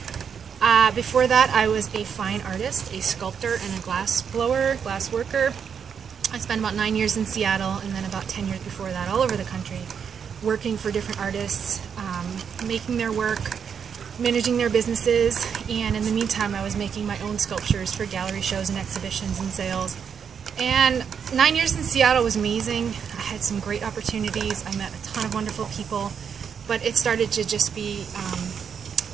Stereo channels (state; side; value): quieter; left; 7.2 dB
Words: Before that, I was a fine artist, a sculptor, and a glass blower, glass worker. I spent about 9 years in Seattle, and then about 10 years before that all over the country, working for different artists, making their work, managing their businesses, and in the meantime I was making my own sculptures for gallery shows and exhibitions and sales. And 9 years in Seattle was amazing. I had some great opportunities. I met a ton of wonderful people, but it started to just be